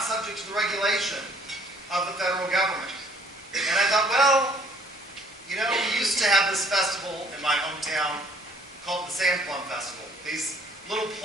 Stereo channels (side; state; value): both; normal; correlation 0.61